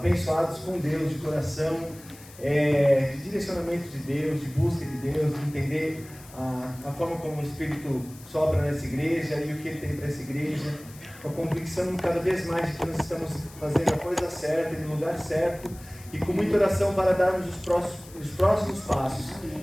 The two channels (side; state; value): left; noise; hiss, 20 dB below the sound